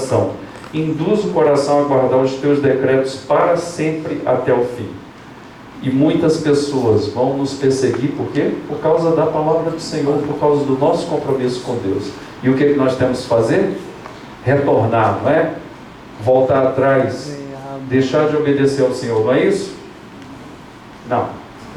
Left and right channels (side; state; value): both; identical; correlation 1.00